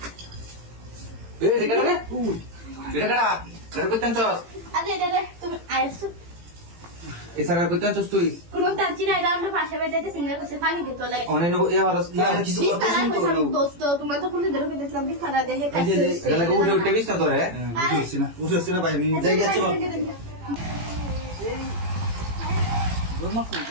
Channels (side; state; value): left; late; 18 ms